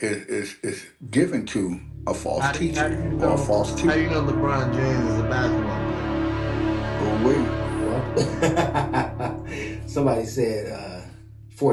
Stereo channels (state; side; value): identical; both; correlation 1.00